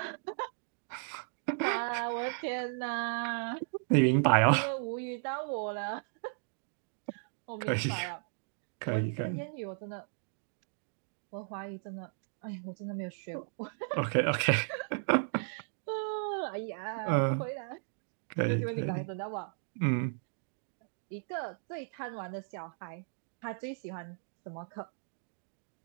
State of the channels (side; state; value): left; silent; digital silence